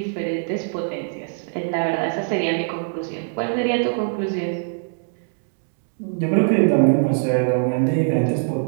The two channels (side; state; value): left; silent; digital silence